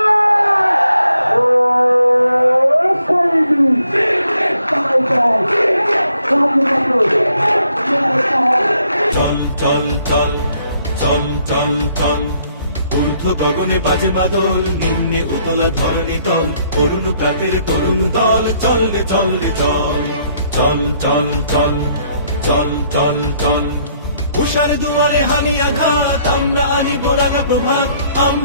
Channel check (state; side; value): inverted; both; correlation -0.69